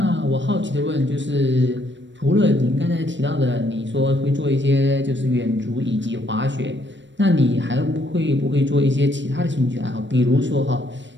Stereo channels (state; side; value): late; left; 0.53 ms